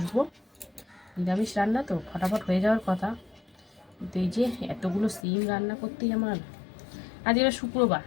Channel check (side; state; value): right; drops out; at 5.2 s